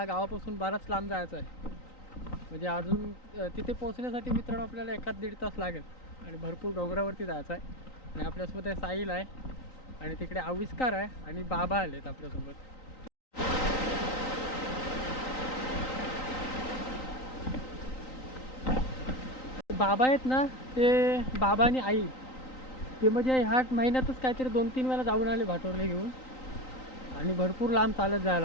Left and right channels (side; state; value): right; late; 3.9 ms